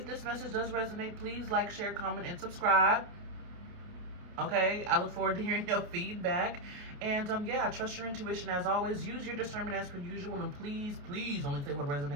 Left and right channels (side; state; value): left; late; 28 ms